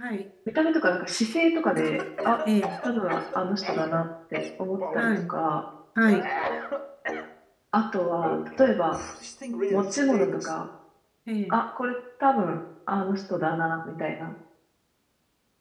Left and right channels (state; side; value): identical; both; correlation 1.00